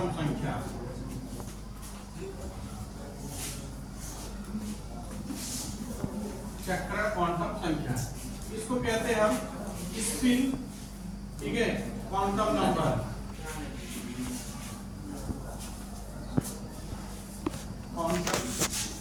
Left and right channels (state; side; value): identical; both; correlation 1.00